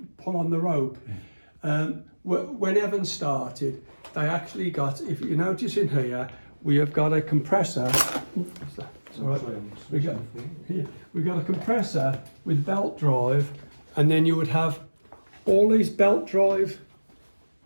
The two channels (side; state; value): both; inverted; correlation -1.00